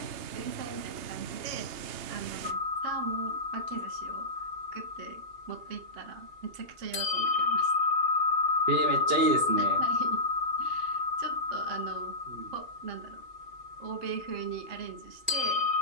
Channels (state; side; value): late; left; 2.8 ms